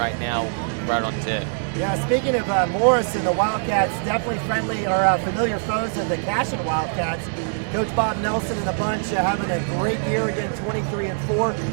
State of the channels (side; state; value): left; silent; digital silence